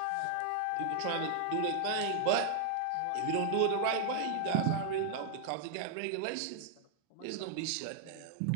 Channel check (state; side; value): different; both; correlation 0.00